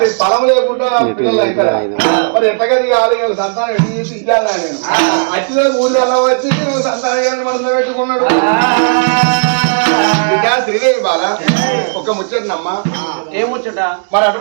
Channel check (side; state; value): left; silent; digital silence